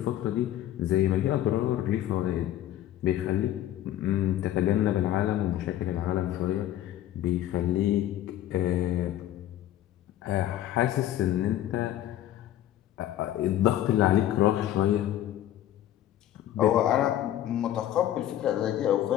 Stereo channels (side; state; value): right; quieter; 12.6 dB